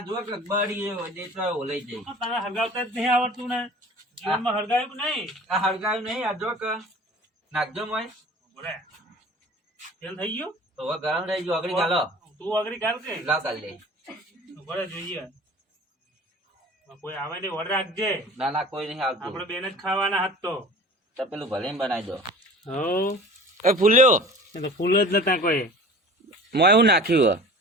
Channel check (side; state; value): both; normal; correlation 0.42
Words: જો કે બળી ગયો દે તો ઓલાઈ જાય તને હરગાવતા જ નહીં આવડતું ને જીવનમાં હરગાવ્યું કે નહીં આ હળગાયું નહીં આ જો કે નાખજો મોય બોલે તેલ થઈ ગયું તો હવે ગરમ રહી ગયો આગળ ચાલો તું આગળ ગાલ કે લાવ કાઢ લે બોલે જોઈએ કોઈ આવે ને ઓર્ડર રાખજે ના ના કોઈ નહીં આવતું આપણે બેન જ ખાવાના હાથ તો પેલું ભલે બનાવી દો હો એ ફૂલ્યો એ તો ફૂલ જ નતા કોઈ મોય હું નાખ્યું